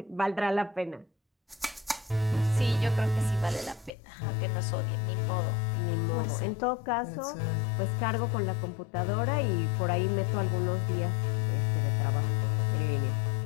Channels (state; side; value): drops out; right; at 3.9 s